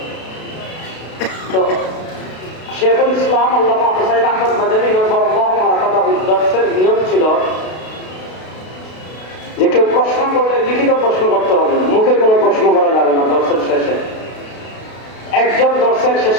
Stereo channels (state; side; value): late; right; 32 ms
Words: তো শেখুল ইসলাম আল্লামা হুসাইন আহমদ মাদানী নব্বরাল্লাহু মারকাদাহু দর্সের নিয়ম ছিল যে কেউ প্রশ্ন করলে লিখিত প্রশ্ন করতে হবে, মুখে কোনো প্রশ্ন করা যাবে না। দর্সের শেষে একজন দর্শক